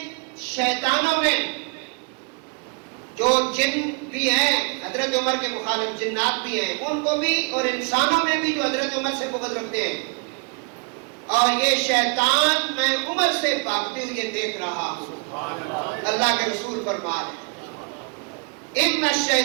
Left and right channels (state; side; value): quieter; left; 34.8 dB